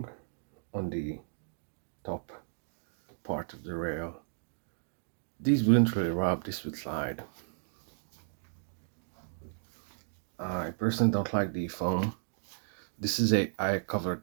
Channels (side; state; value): left; silent; digital silence